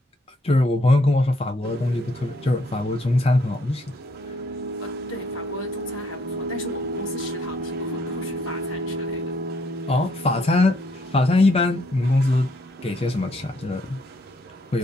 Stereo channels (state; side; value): normal; both; correlation 0.69